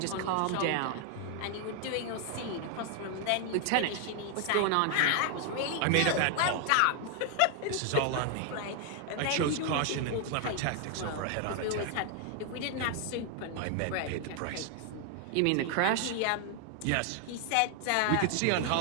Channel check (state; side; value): different; both; correlation 0.00